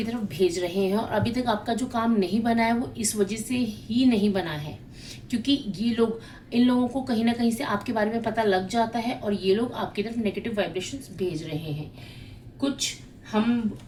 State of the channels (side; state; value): both; identical; correlation 1.00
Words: तरफ भेज रहे हैं। और अभी तक आपका जो काम नहीं बना है वो इस वजह से ही नहीं बना है, क्योंकि ये लोग, इन लोगों को कहीं ना कहीं से आपके बारे में पता लग जाता है और ये लोग आपकी तरफ नेगेटिव वाइब्रेशंस भेज रहे हैं। कुछ हम